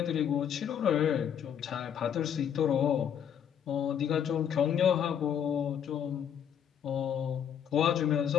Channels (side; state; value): right; quieter; 8.7 dB